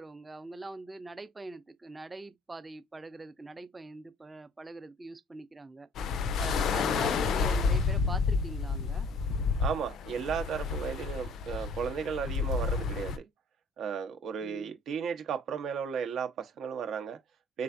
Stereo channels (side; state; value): both; normal; correlation 0.53